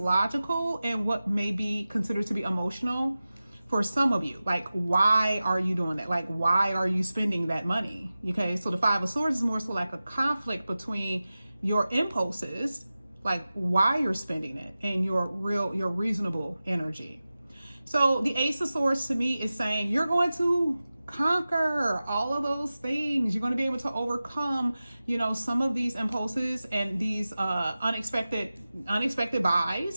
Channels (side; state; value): both; inverted; correlation -0.95